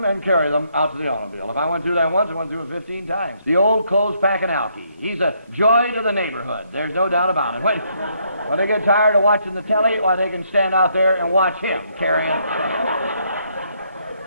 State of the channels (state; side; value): inverted; both; correlation -0.72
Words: and carry them out to the automobile. If I went through that once, I went through it 15 times. The old clothes-packing Alphi. He's a joy to the neighborhood. There's no doubt about it. When they get tired of watching the telly, why, they can stand out there and watch him carrying,